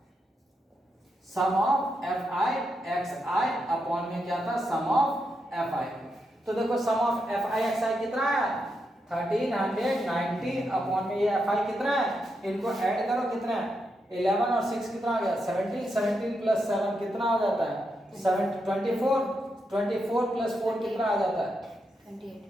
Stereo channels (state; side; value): normal; both; correlation 0.83